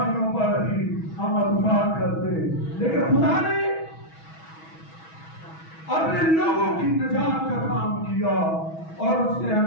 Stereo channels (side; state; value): right; late; 6.2 ms